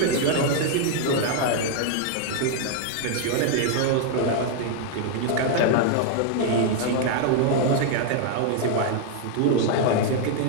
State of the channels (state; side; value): different; both; correlation 0.00